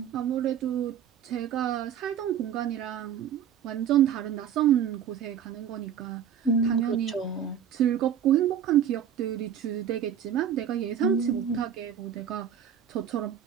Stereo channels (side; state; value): left; quieter; 8.7 dB